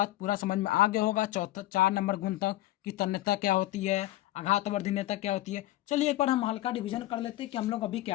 पूरा समझ में आ गया होगा, 4 नंबर गुण तक, कि तन्यता क्या होती है, आघात वर्धनीयता क्या होती है। चलिए एक बार हम हल्का डिवीजन कर लेते हैं कि हम लोग अभी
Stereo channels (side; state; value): right; quieter; 16.2 dB